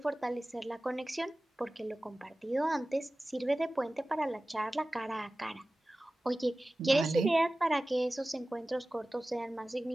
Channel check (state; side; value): normal; both; correlation 0.97